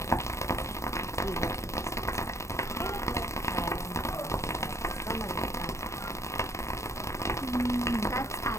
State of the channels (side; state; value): right; late; 0.14 ms